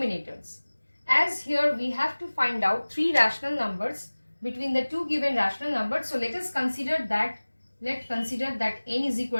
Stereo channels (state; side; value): inverted; both; correlation -1.00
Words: As here we have to find out three rational numbers between the two given rational numbers. So let us consider that, n is